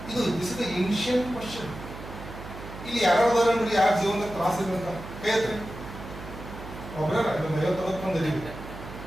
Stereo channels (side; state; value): right; noise; hum, 12 dB below the sound